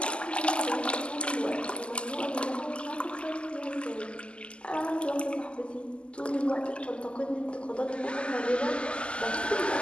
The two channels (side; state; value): right; late; 0.053 ms